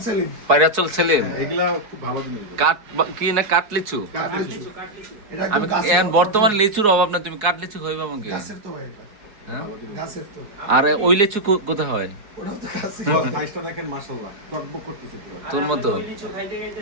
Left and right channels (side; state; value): left; late; 4.8 ms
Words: সেলিম, পায়রাচল সেলিম। এগুলা খুব ভালো জিনিস। কাঠ কি না, কাঠ লিচু? আমি এখন বর্তমানে লিচুর অভাব না, তুমি কাঠ লিচু খাইবা আমাকে? হ্যাঁ? আর ওই লিচু কোথায় হয়? সাইজটা দেখেন মাশাআল্লাহ, টকবক করতেছে পুরো। তোর মতো